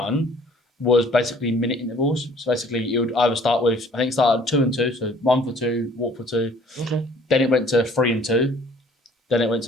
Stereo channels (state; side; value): normal; both; correlation 0.56